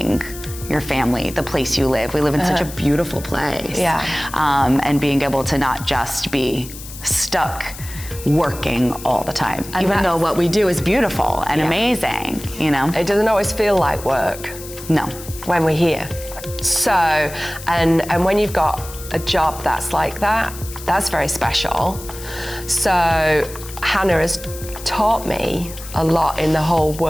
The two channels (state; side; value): noise; left; hiss, 14 dB below the sound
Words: your family, the place you live. We live in such a beautiful place. Yeah. And being able to not just be stuck working all the time, and even though what we do is beautiful and amazing, you know? It doesn't always feel like work. No. When we're here. So, and when you've got a job that's like that, that's very special. So Hannah has taught me a lot in the whole